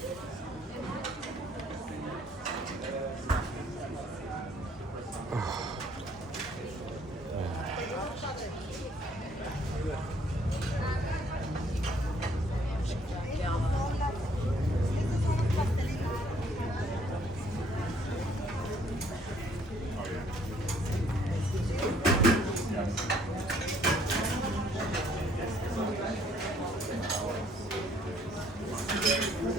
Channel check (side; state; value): both; normal; correlation 0.63